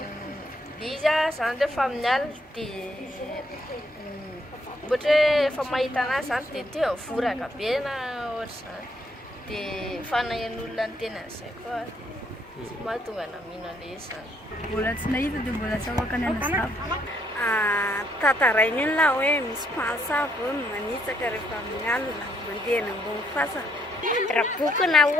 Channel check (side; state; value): both; normal; correlation 0.71